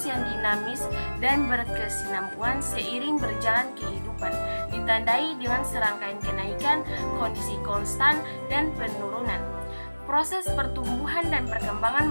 yang dinamis dan berkesinambungan seiring berjalan kehidupan, ditandai dengan serangkaian kenaikan, kondisi konstan, dan penurunan. Proses pertumbuhan dan perkembangan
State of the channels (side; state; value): both; inverted; correlation -1.00